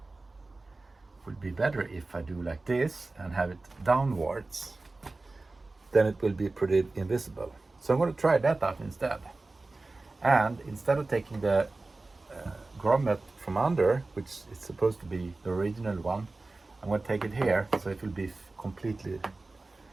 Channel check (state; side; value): quieter; left; 3.3 dB